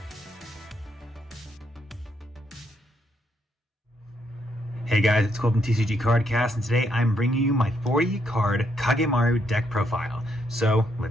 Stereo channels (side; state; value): both; normal; correlation 0.75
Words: Hey guys, it's Cole from TCG Cardcast, and today I'm bringing you my 40 card Kagemaru deck profile. So